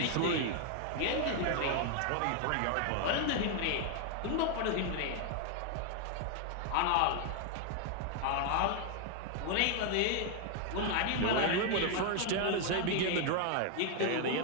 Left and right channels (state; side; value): different; both; correlation 0.00